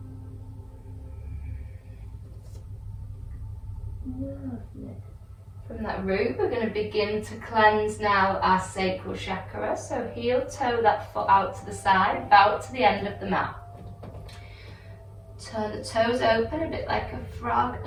Lovely. From that root, we're going to begin to cleanse now our sacral chakra. So heel toe that foot out to the side, bow to the end of the mat. Turn the toes open a bit like a frog,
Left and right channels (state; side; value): identical; both; correlation 1.00